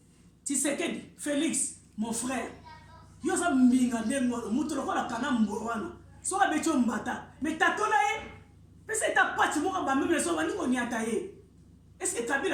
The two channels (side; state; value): both; identical; correlation 1.00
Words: Tshisekedi Félix mon frère yo sa mbinga ndengo mutu lokola kana mbo wana so abecho mbata mais tatola pesa eta pati moko ba même les hommes ni koni ataye. Est-ce que